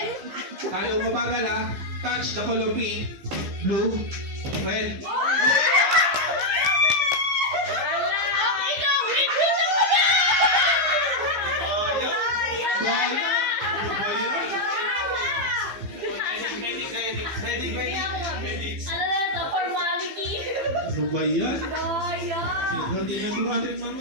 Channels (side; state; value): left; late; 15 ms